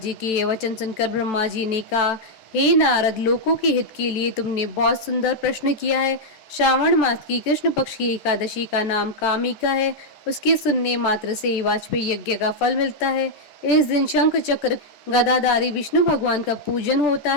जी के ये वचन सुनकर ब्रह्मा जी ने कहा, हे नारद, लोकों के हित के लिए तुमने बहुत सुंदर प्रश्न किया है। श्रावण मास की कृष्ण पक्ष की एकादशी का नाम कामिका है। उसके सुनने मात्र से वाजपेयी यज्ञ का फल मिलता है। इस दिन शंख चक्र गदाधारी विष्णु भगवान का पूजन होता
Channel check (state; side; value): late; right; 13 ms